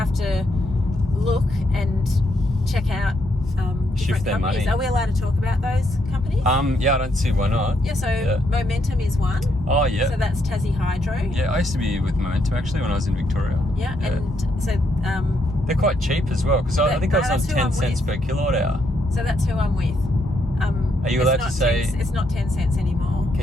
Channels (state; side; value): normal; both; correlation 0.76